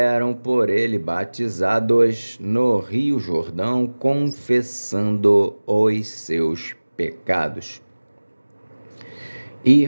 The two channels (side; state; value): both; inverted; correlation -1.00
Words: por ele batizados no rio Jordão, confessando os seus pecados.